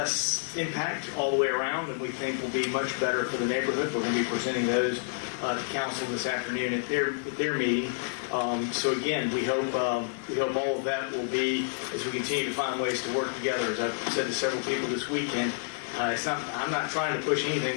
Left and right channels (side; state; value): right; silent; digital silence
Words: impact all the way around, and we think will be much better for the neighborhood. We're going to be presenting those to council this afternoon at their meeting. So again, we hope all of that will be, as we continue to find ways to work together. As I've said to several people this weekend, I'm not trying to push